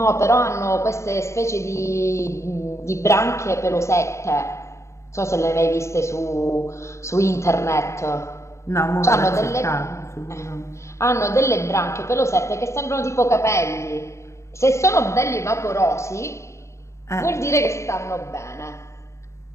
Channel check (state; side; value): late; right; 0.14 ms